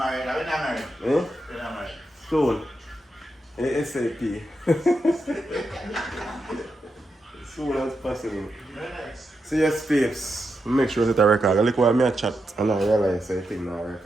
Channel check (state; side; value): normal; both; correlation 0.86